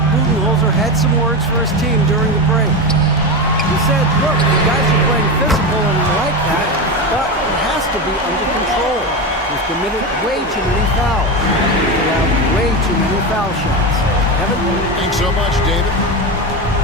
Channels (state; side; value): normal; both; correlation 0.18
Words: Budenholzer had some words for his team during the break. He said, look, the guys are playing physical and we like that, but it has to be under control. We've committed way too many fouls. We have way too many foul shots. Kevin? Thanks so much, David.